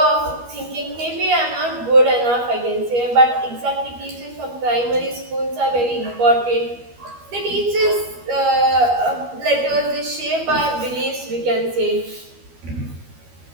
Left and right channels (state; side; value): late; left; 12 ms